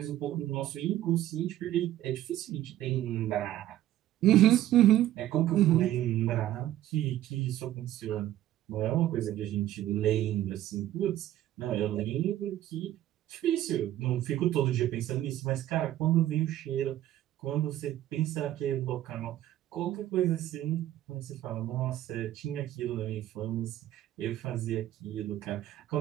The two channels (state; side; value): quieter; left; 13.3 dB